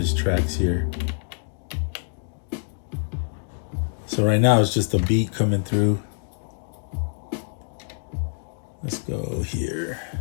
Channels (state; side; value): silent; right; digital silence